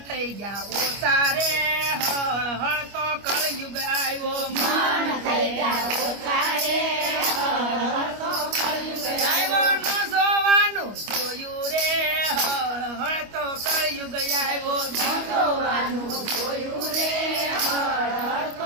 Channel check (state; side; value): late; left; 25 ms